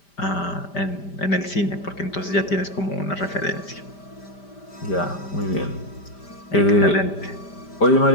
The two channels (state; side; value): late; right; 5.1 ms